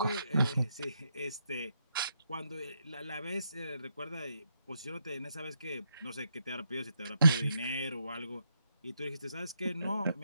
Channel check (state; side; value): inverted; both; correlation -0.79